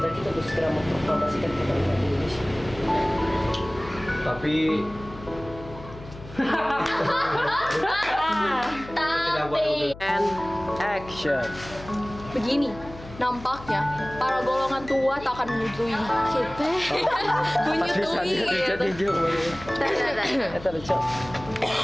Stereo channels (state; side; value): noise; left; hum, 16 dB below the sound